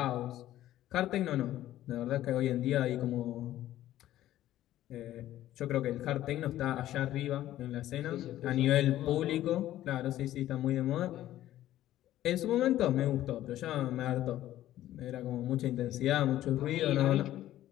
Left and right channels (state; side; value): quieter; right; 13.6 dB